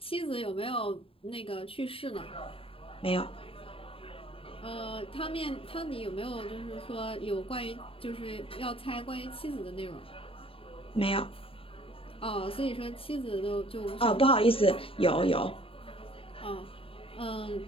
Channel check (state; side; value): late; right; 0.27 ms